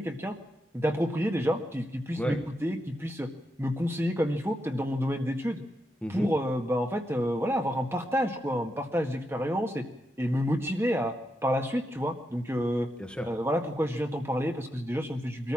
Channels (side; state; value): both; normal; correlation 0.84